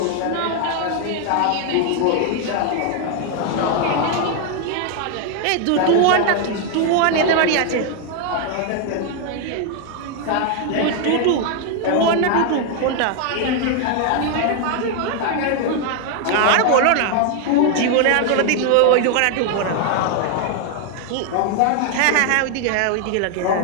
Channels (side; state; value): both; different; correlation 0.00